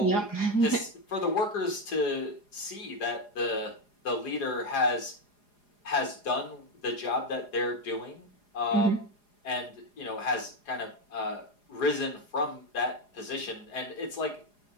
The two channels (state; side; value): late; right; 4.9 ms